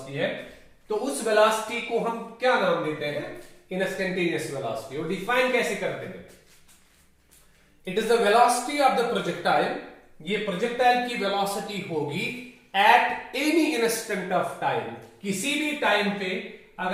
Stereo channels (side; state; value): both; identical; correlation 1.00